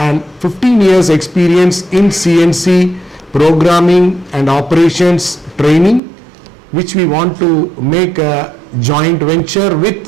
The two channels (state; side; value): drops out; left; at 6.0 s